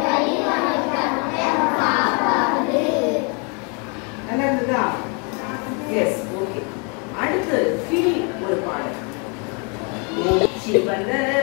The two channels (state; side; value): quieter; right; 35.3 dB